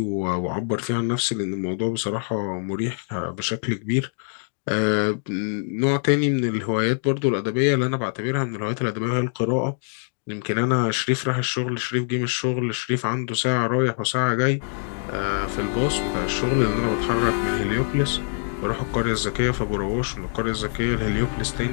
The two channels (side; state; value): right; silent; 62 dB below the other